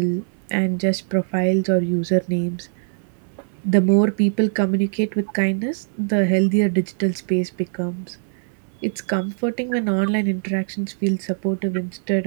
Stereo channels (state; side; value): silent; left; 64 dB below the other